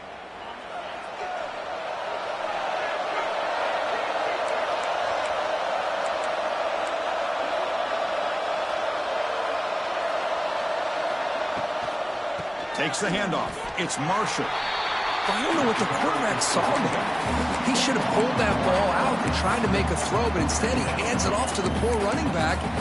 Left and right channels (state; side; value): identical; both; correlation 1.00